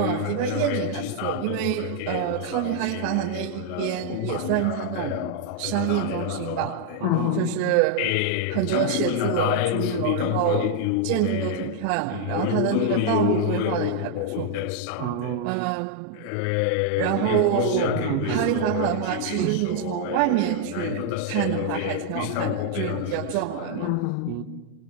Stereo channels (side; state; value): both; different; correlation 0.00